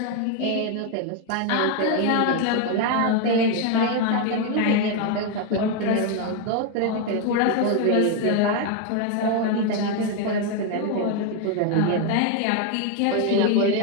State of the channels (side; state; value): both; different; correlation 0.01